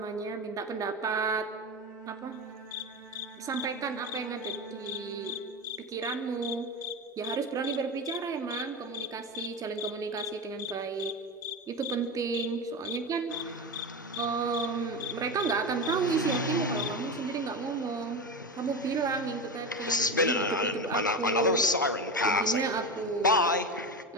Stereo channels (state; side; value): normal; both; correlation 0.21